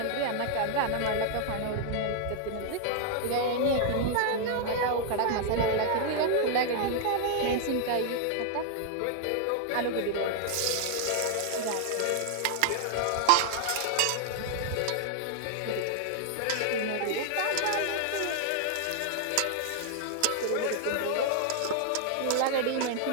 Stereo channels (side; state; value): both; different; correlation 0.00